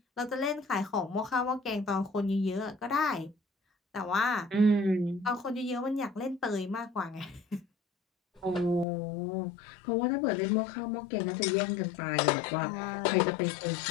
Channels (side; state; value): right; drops out; at 8.8 s